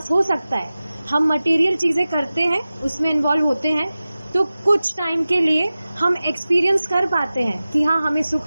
हो सकता है। हम मटेरियल चीजें करते हैं, उसमें इन्वॉल्व होते हैं, तो कुछ टाइम के लिए हम एक्सपीरियंस कर पाते हैं कि हाँ हमें सुख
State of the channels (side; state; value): both; inverted; correlation -0.96